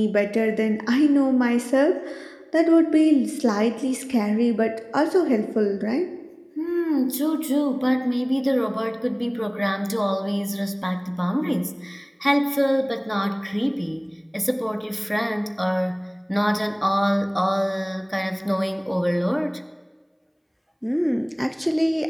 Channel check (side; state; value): both; identical; correlation 1.00